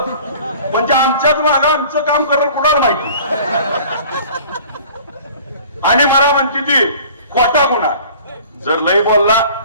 म्हणजे आमच्याच मागं आमचं काम करणं कुणाला माहिती. आणि मला म्हणते ती खोटा गुन्हा, जर लय बोलला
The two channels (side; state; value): both; inverted; correlation -0.47